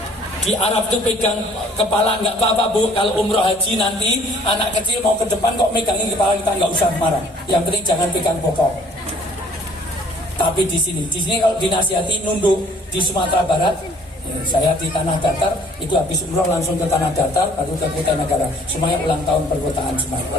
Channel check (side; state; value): both; normal; correlation 0.57